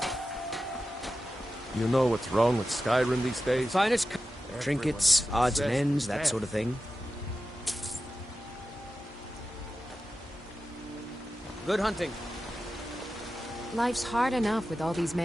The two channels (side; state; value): both; normal; correlation 0.93